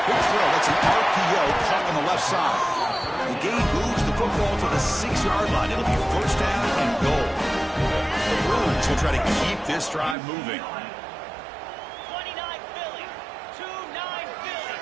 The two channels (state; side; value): drops out; left; at 10.2 s